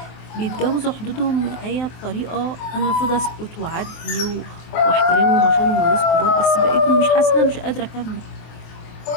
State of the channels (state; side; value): late; right; 23 ms